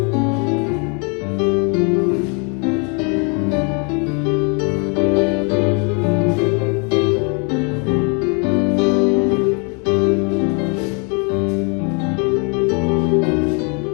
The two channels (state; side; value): quieter; right; 36.1 dB